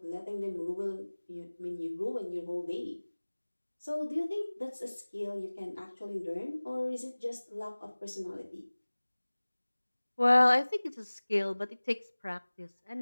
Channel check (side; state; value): both; inverted; correlation -1.00